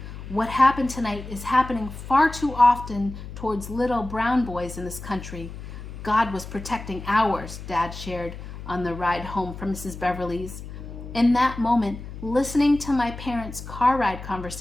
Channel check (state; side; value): noise; left; hum, 11 dB below the sound